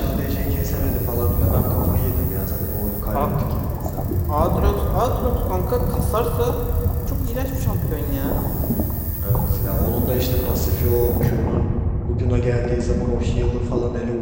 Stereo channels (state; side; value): identical; both; correlation 1.00